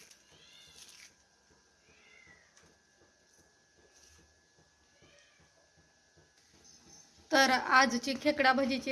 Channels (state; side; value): identical; both; correlation 1.00